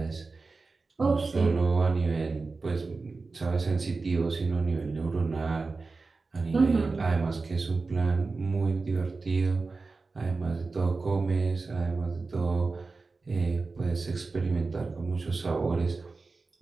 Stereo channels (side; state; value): left; quieter; 4.0 dB